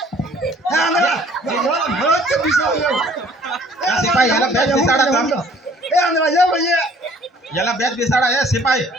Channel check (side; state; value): both; normal; correlation 0.56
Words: ए आंधळा भरत के बिसाव सिपाही याला बेस बिसाडा का ए आंधळा ये भैया याला बेस बिसाडा आहे सिपाही